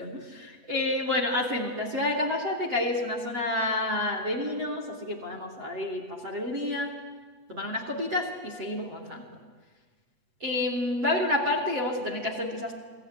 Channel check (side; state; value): left; late; 8.2 ms